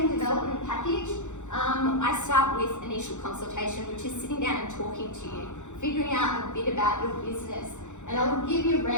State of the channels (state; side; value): late; right; 0.84 ms